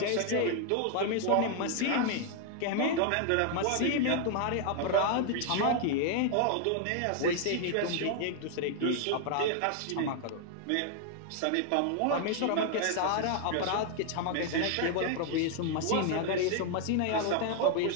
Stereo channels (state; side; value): different; both; correlation 0.00